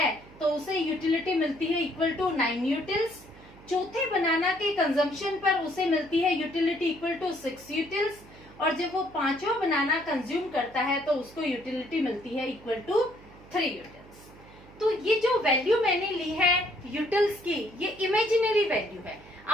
तो उसे यूटिलिटी मिलती है इक्वल टू 9 यूटिल्स। चौथे बनाना के कंजम्पशन पर उसे मिलती है यूटिलिटी इक्वल टू 6 यूटिल्स, और जब वो पांचवा बनाना कंज्यूम करता है तो उसको यूटिलिटी मिलती है इक्वल टू 3 यूटिल्स। तो ये जो वैल्यू मैंने ली है यूटिल्स की, ये इमेजिनरी वैल्यू है।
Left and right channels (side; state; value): right; noise; hum, 22 dB below the sound